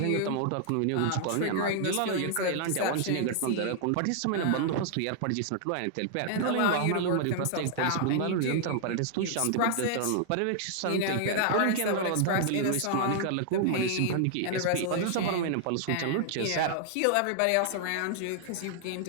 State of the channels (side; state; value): both; different; correlation 0.00